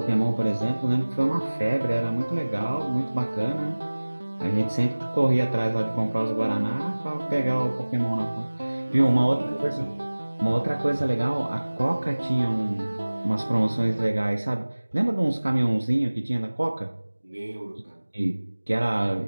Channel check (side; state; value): both; inverted; correlation -1.00